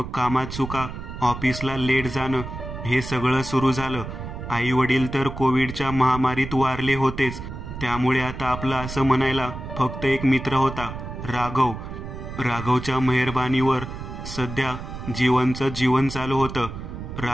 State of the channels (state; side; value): noise; right; rumble, 9 dB below the sound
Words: कामात चुका, ऑफिसला लेट जाणं, हे सगळं सुरू झालं. आई वडील तर कोविडच्या महामारीत वारले होतेच. त्यामुळे आता आपलं असं म्हणायला फक्त एक मित्र होता, राघव. राघवच्या मेहरबानीवर सध्या जीवनचं जीवन चालू होतं.